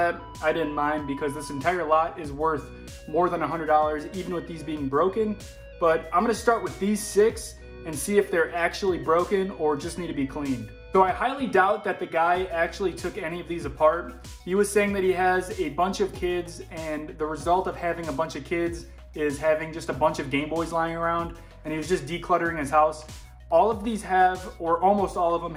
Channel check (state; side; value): identical; both; correlation 1.00